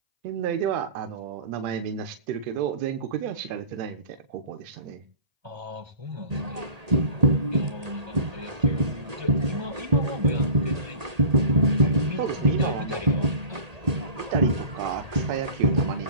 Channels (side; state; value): left; late; 1.8 ms